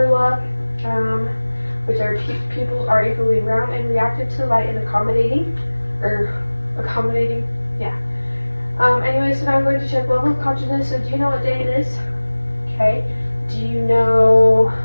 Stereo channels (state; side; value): inverted; both; correlation -1.00